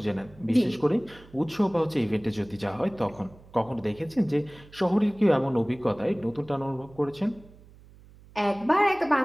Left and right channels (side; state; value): right; noise; hum, 23 dB below the sound